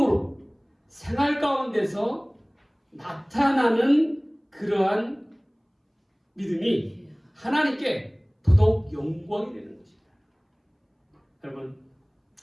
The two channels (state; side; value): identical; both; correlation 1.00